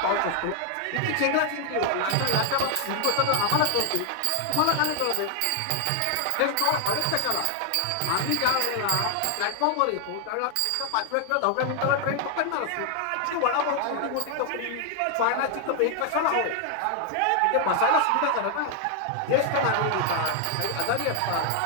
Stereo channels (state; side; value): different; both; correlation 0.00